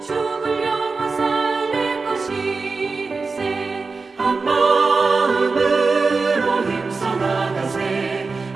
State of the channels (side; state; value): left; quieter; 4.2 dB